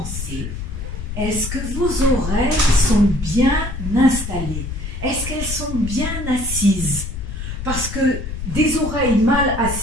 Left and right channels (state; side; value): noise; left; rumble, 6 dB below the sound